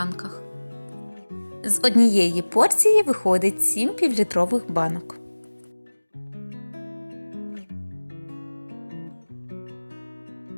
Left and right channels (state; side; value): inverted; both; correlation -1.00